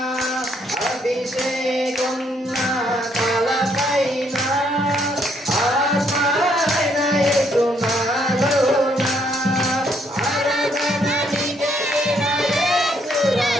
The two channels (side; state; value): both; normal; correlation 0.70